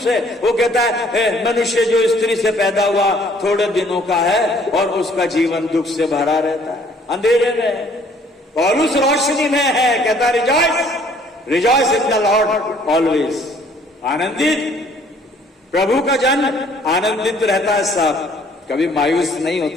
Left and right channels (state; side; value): normal; both; correlation 0.59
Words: वो कहता है मनुष्य जो स्त्री से पैदा हुआ थोड़े दिनों का है और उसका जीवन दुख से भरा रहता है, अंधेरे में। पौलुस रोशनी में है, कहता rejoice in the Lord always, आनंदित। प्रभु का जन आनंदित रहता है साहब, कभी मायूस नहीं